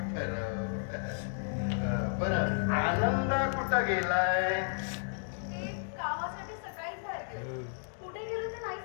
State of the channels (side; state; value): right; silent; digital silence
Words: ठरव. बरं आनंद कुठं गेलाय? ते कामासाठी सकाळी बाहेर गेले. कुठे गेले ते नाही